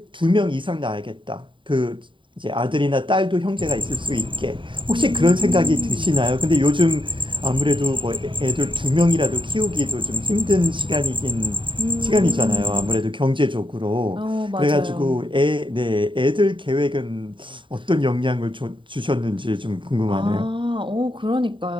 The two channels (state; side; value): late; left; 0.24 ms